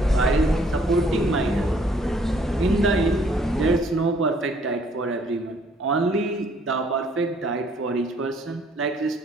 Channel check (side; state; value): both; normal; correlation 0.63